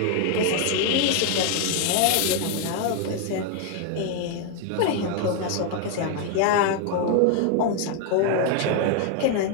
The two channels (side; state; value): both; different; correlation 0.00